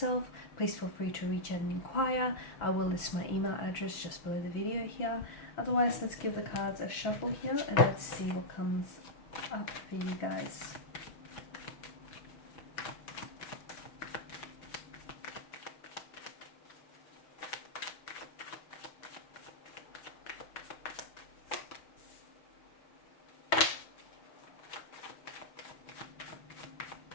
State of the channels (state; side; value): late; right; 6.2 ms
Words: please feel free to reach out and inquire. I will list my email address just below the video here. Otherwise, let's give the cards a shuffle here and let's see what comes up for you guys.